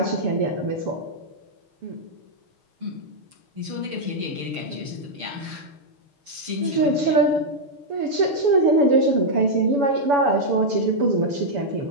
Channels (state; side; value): late; left; 7.0 ms